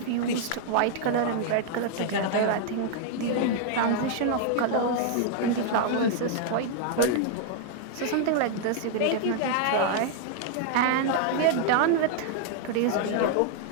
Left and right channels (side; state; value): both; different; correlation -0.01